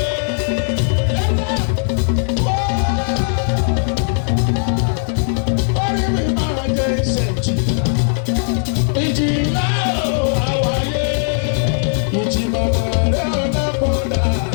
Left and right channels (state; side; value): silent; right; 67 dB below the other